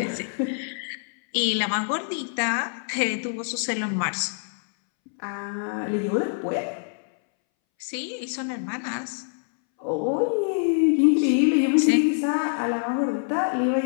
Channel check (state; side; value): silent; right; 62 dB below the other